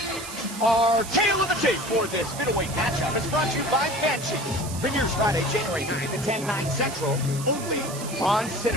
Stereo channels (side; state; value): right; noise; hiss, 11 dB below the sound